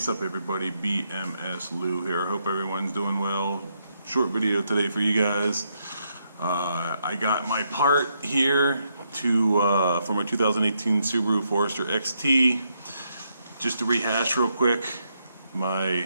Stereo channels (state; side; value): inverted; both; correlation -0.78